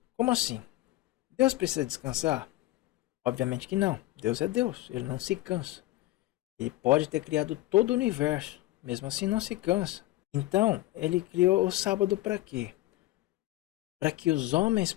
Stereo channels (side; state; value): right; quieter; 16.9 dB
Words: Como assim? Deus precisa descansar? Obviamente que não. Deus é Deus, ele não se cansa. Ele pode ter criado todo o universo, mesmo assim não se cansa. Então, ele criou o sábado para quê? Para que os homens